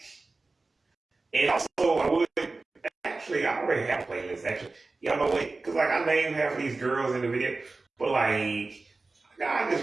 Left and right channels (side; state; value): left; quieter; 3.6 dB